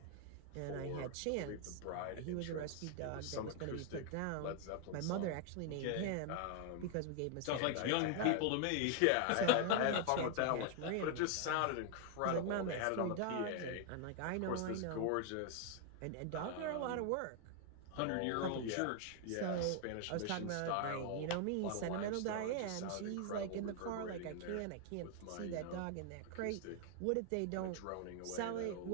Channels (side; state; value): both; different; correlation 0.00